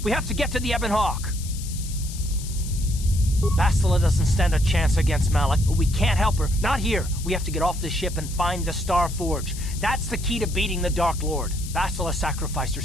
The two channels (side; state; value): left; noise; hiss, 13 dB below the sound